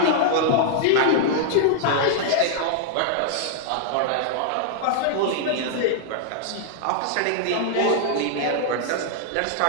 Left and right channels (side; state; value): both; different; correlation -0.01